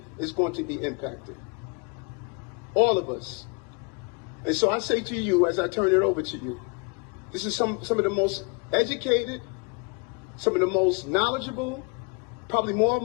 is going to be impacted. All of us. And so I say to you, as I turn it over to you, this is some of the most educated, some of the most knowledgeable, probably more of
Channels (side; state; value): right; quieter; 32.7 dB